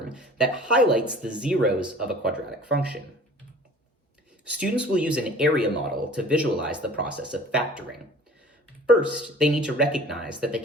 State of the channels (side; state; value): both; normal; correlation 0.46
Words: that highlights the zeros of a quadratic function. Students will use an area model to visualize the process of factoring. First, they need to recognize that they